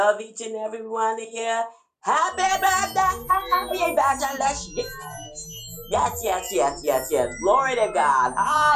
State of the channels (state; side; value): identical; both; correlation 1.00